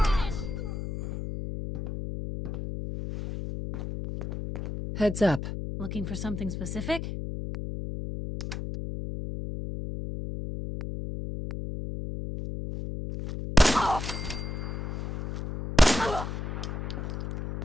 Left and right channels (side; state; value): left; noise; hum, 5 dB below the sound